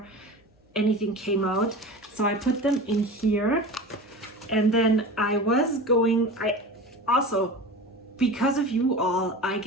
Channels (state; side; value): normal; both; correlation 0.32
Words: anything came out. So I put them in here. And then I also, because of you all, I